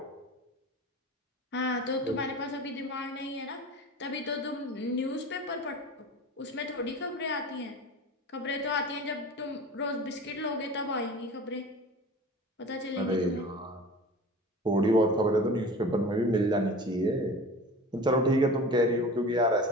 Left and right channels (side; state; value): both; normal; correlation 0.37